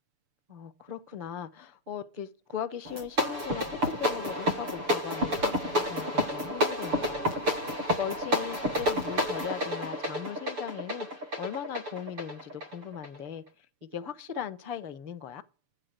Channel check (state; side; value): late; left; 6.9 ms